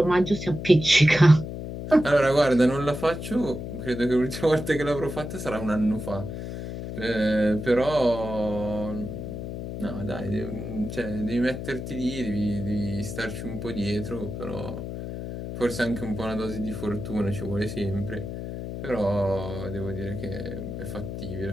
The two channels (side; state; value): left; noise; hum, 7 dB below the sound